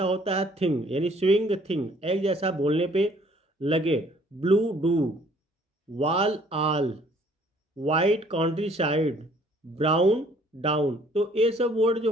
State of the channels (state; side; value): normal; both; correlation 0.59